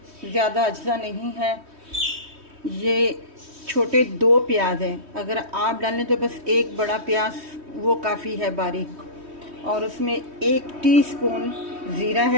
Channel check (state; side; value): late; left; 3.1 ms